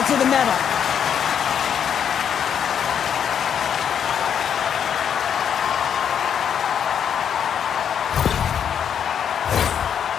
to the metal.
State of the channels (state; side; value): quieter; right; 8.3 dB